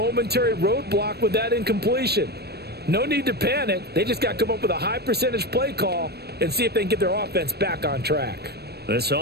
roadblock with that incompletion. No need to panic. They just got to come up with a high percentage play call and see if they can get their offense back on track. This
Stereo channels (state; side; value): late; left; 0.47 ms